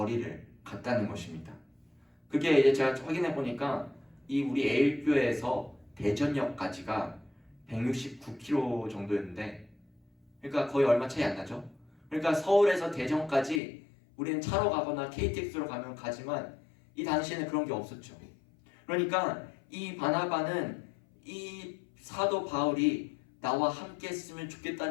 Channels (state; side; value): drops out; right; at 13.6 s